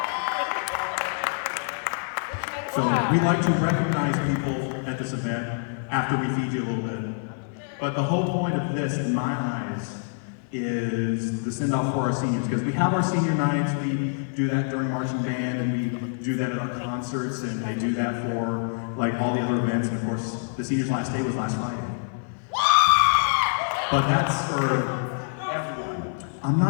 So we like to recognize people at this event after we feed you a little bit. But the whole point of this, in my eyes, is the send-off for our seniors. Because we have our senior nights, we do that during marching band, and we do that at our concerts, and they do that for all the other events. And of course, the seniors' last day was last Friday. But that's for everyone. I'm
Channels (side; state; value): right; silent; 55 dB below the other